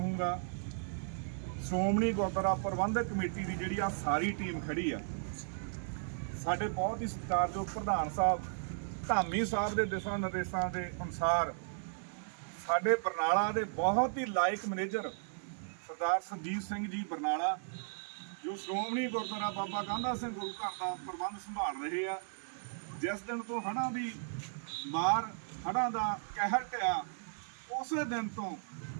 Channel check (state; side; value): silent; left; 54 dB below the other